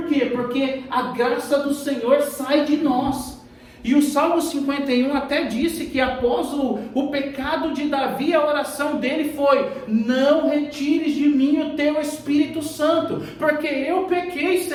quê? Porque a graça do Senhor sai de nós. E o Salmo 51 até disse que após o pecado de Davi, a oração dele foi: não retires de mim o teu Espírito Santo, porque eu pequei,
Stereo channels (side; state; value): both; identical; correlation 1.00